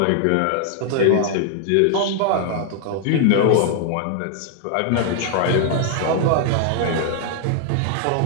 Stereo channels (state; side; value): different; both; correlation 0.00